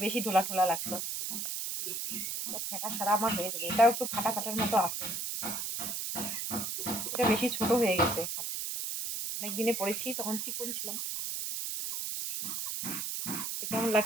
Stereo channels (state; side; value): noise; right; hiss, 3 dB below the sound